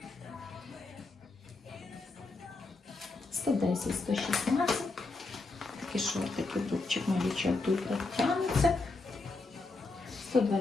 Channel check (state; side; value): quieter; right; 3.5 dB